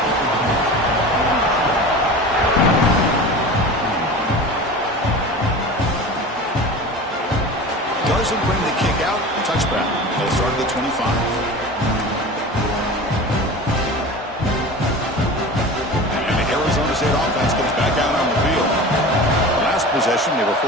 Doesn't bring the kick out. Touchback. They'll start at the 25. And the Arizona State offense comes back out on the field. Last possession, they were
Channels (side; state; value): both; normal; correlation 0.34